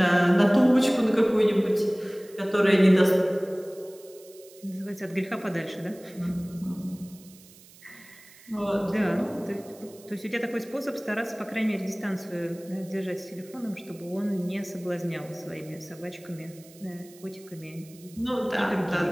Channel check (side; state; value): right; noise; hiss, 23 dB below the sound